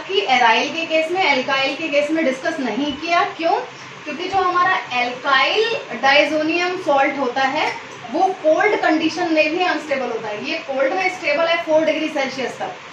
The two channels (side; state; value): both; identical; correlation 1.00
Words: की एराइल के केस में, एल्काइल के केस में डिस्कस नहीं किया। क्यों? क्योंकि जो हमारा एल्काइल डाइजोनियम सॉल्ट होता है वो कोल्ड कंडीशन में भी अनस्टेबल होता है। ये कोल्ड में स्टेबल है 4 डिग्री सेल्सियस